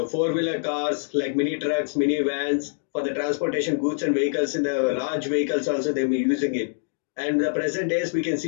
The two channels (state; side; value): silent; right; digital silence